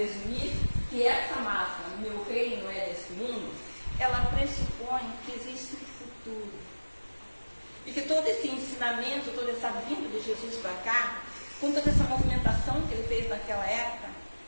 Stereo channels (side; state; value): both; inverted; correlation -1.00